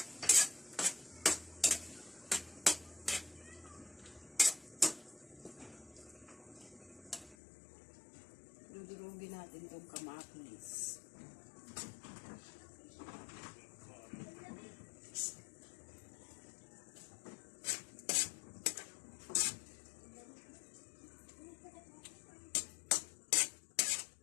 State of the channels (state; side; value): drops out; right; at 7.4 s